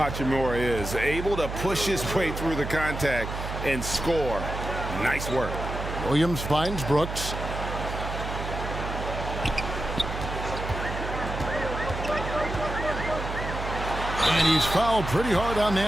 is. Able to push his way through the contact and score. Nice work. Williams finds Brooks. And he's fouled pretty hard on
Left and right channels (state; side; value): noise; right; hum, 6 dB below the sound